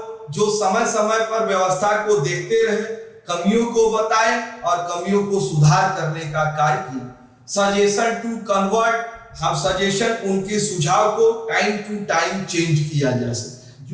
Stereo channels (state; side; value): identical; both; correlation 1.00